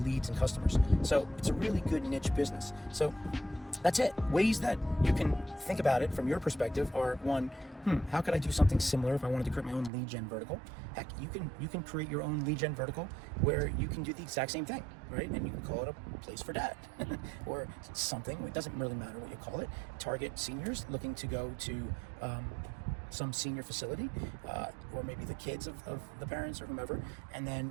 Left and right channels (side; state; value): left; drops out; at 9.9 s